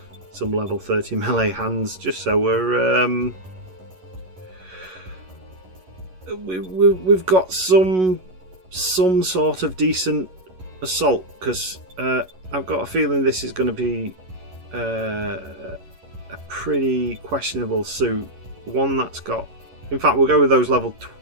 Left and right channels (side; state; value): left; late; 11 ms